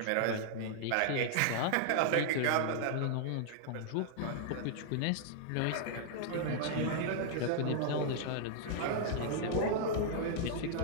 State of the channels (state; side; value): different; both; correlation -0.01